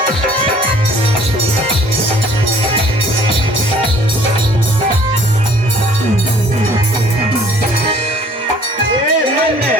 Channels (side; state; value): both; normal; correlation 0.55